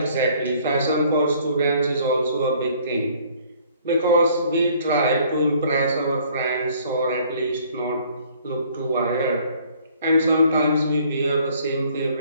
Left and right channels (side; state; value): both; inverted; correlation -0.58